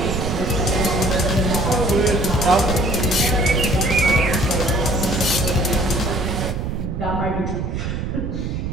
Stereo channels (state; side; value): noise; right; rumble, 3 dB below the sound